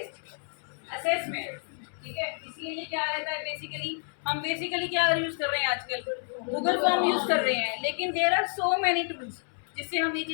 assessment, ठीक है। इसीलिए क्या रहता है, बेसिकली क्या यूज कर रहे हैं आजकल, गूगल फॉर्म यूज कर रहे हैं, लेकिन there are so many tools जिससे हम ये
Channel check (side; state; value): right; silent; 58 dB below the other